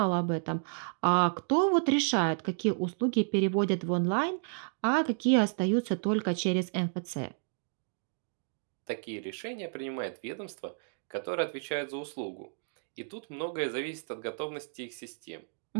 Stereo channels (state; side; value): silent; left; digital silence